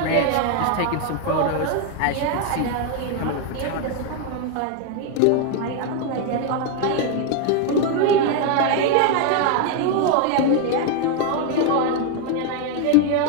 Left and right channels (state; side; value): different; both; correlation 0.01